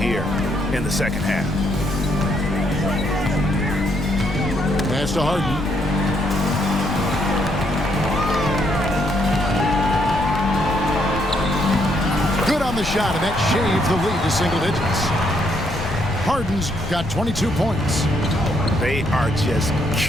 in the 2nd half. Pass to Harden. Good on the shot, and that shaves the lead to single digits. Harden's got 22 points. They are just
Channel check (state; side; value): noise; left; rumble, 9 dB below the sound